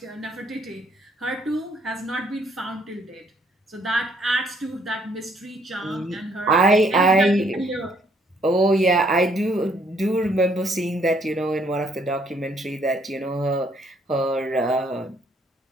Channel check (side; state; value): both; normal; correlation 0.67